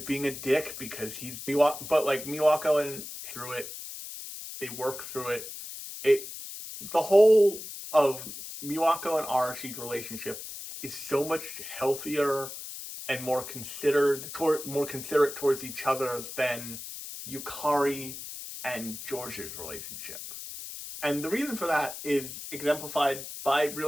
being a dick because he's but like Miwako and through it, they work through it. The whole of Miwako and Arashi's relationship is so much healthier and more considerate towards each other than Yukari and George's relationship. And the reason for that is exemplified by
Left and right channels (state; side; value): noise; left; hiss, 10 dB below the sound